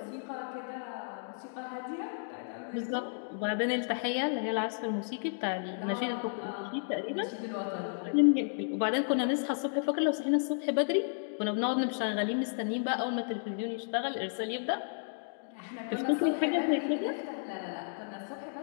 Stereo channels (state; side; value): silent; right; digital silence